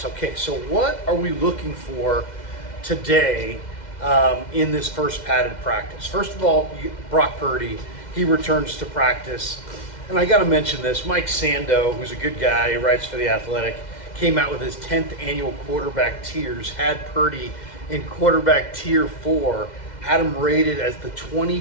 Okay, so what are we looking for today in this first padded practice? First of all, Brock Purdy, he returns to practice, and I got to mention this. Mike Sando, who's a good guy, he writes for The Athletic, came out with his 10th annual quarterback tiers, had Purdy in quarterback tier 4, had him rated as the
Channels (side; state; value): right; late; 2.1 ms